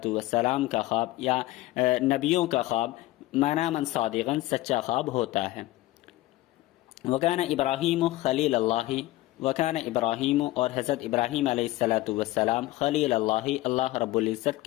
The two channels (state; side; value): quieter; right; 17.5 dB